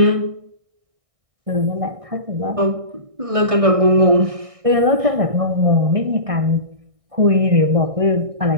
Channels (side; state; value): left; late; 1.6 ms